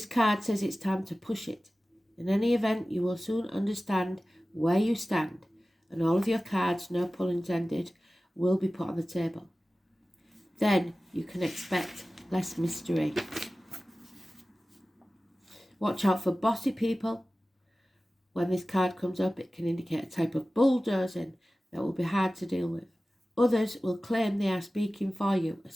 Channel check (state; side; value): normal; both; correlation 0.96